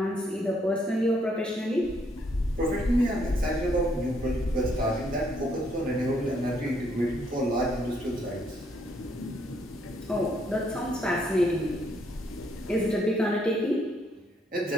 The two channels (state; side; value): normal; both; correlation 0.71